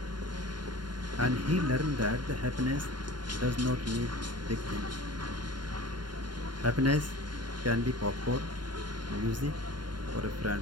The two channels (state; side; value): late; left; 0.71 ms